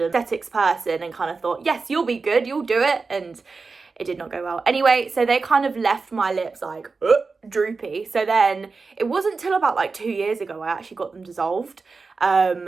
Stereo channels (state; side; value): quieter; left; 4.3 dB